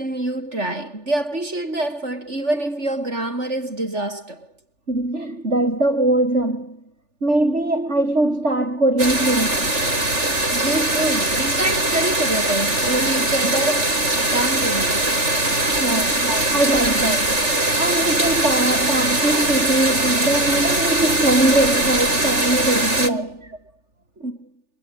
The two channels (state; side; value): late; left; 3.4 ms